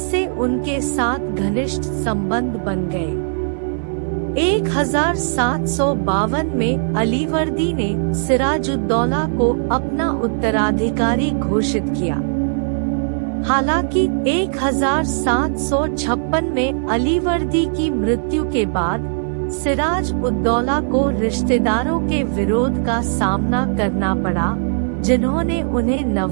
उनके साथ घनिष्ठ संबंध बन गए। 1752 में अलीवर्दी ने सिराजुद्दौला को अपना उत्तराधिकारी घोषित किया। हालांकि 1756 में अलीवर्दी की मृत्यु के बाद सिराज उद-दौला को रिश्तेदारों के विरोध का सामना करना पड़ा, जिन्होंने उन्हें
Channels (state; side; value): silent; left; 59 dB below the other